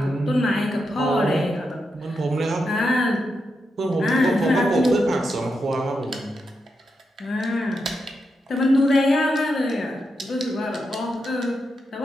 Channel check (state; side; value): normal; both; correlation 0.85